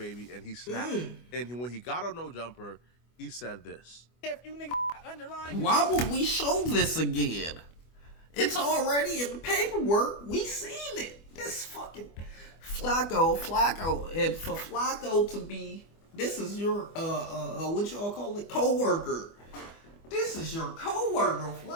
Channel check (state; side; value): late; right; 24 ms